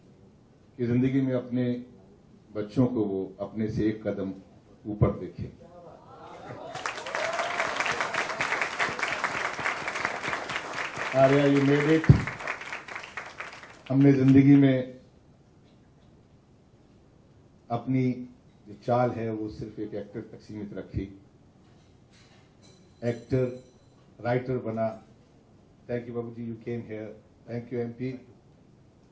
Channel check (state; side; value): identical; both; correlation 1.00